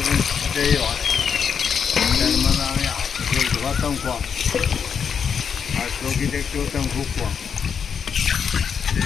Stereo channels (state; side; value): quieter; right; 6.9 dB